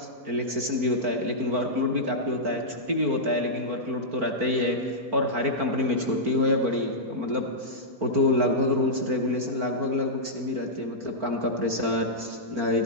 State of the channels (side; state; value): left; late; 4.4 ms